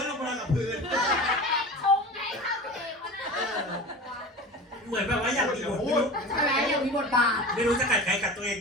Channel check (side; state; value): both; normal; correlation 0.33